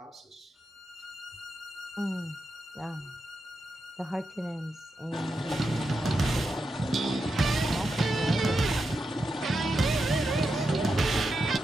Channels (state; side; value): normal; both; correlation 0.87